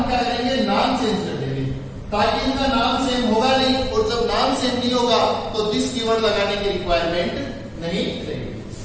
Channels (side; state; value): both; identical; correlation 1.00